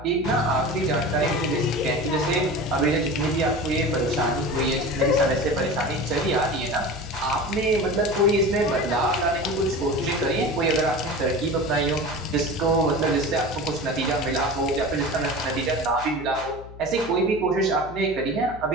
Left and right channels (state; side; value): noise; left; hum, 16 dB below the sound